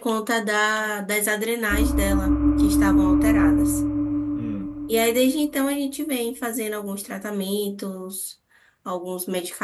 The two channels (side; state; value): both; identical; correlation 1.00